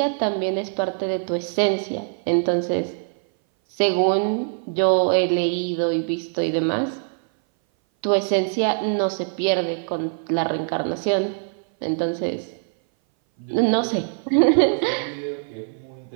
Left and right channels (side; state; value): left; silent; 59 dB below the other